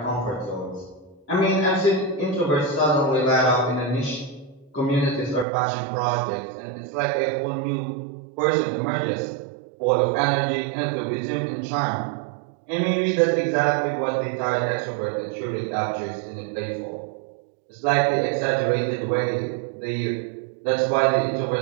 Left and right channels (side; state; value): left; drops out; at 5.5 s